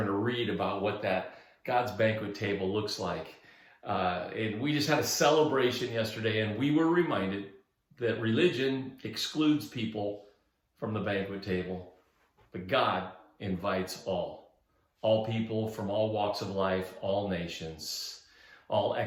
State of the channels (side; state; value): both; identical; correlation 1.00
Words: to read about what that God's banquet table looks like. And we just had a celebration yesterday, and we were reminded that religion excludes people from the banquet table, but God invites all people from all walks of life, all nations, all